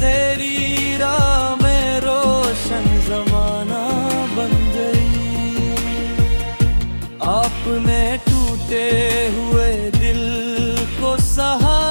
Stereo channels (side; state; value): both; inverted; correlation -1.00